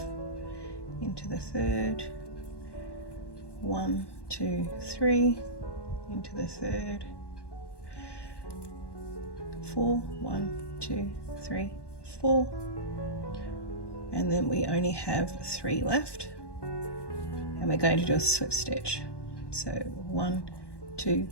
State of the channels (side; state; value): right; late; 1.1 ms